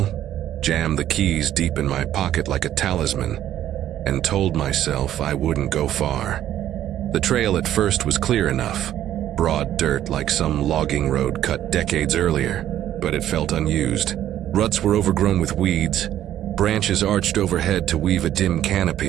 jammed the keys deep in my pocket like a talisman, and told myself I wouldn't go far. The trail at first was clear enough, broad dirt like some logging road cut decades earlier, but it felt unused. Ruts were overgrown with weeds, branches arched overhead to weave a dim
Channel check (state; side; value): quieter; left; 11.9 dB